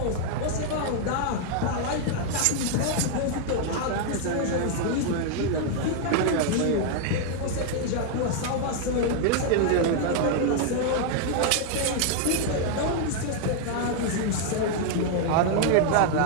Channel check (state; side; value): different; both; correlation 0.00